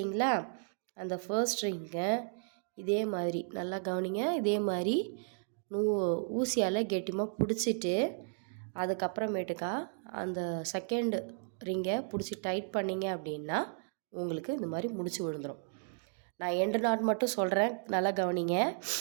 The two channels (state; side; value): silent; left; digital silence